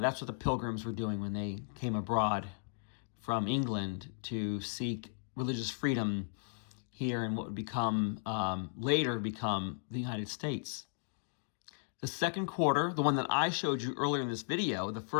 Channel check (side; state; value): right; silent; digital silence